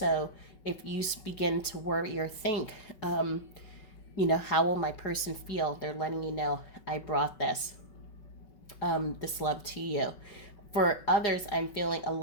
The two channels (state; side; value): late; right; 5.3 ms